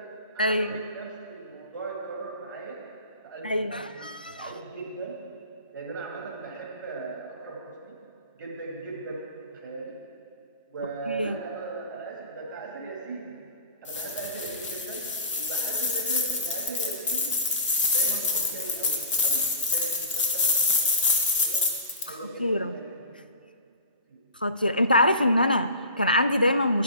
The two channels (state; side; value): inverted; both; correlation -0.36